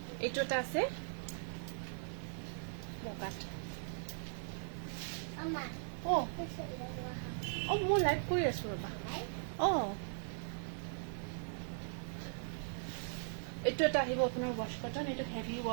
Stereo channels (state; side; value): silent; left; 52 dB below the other